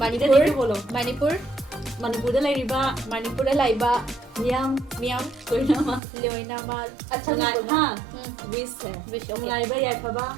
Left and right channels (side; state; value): left; drops out; at 6.0 s